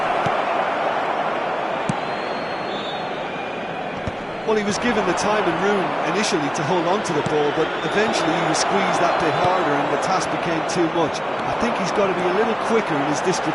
Well, he was given the time and room initially to hold on to the ball, but eventually he was squeezed that bit harder and the task became too much. I think he's got to be a little quicker in his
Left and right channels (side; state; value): both; identical; correlation 1.00